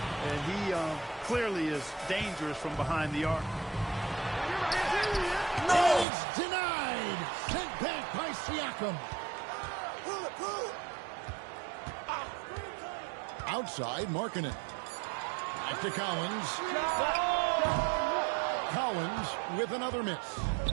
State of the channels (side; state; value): left; drops out; at 6.1 s